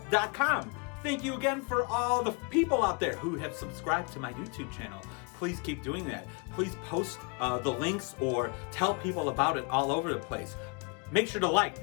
Thank you again for all the people out there who have subscribed to my YouTube channel. Please keep doing that. Please post the links or tell people about it all over the place. Make sure to like,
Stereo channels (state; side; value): quieter; right; 31.8 dB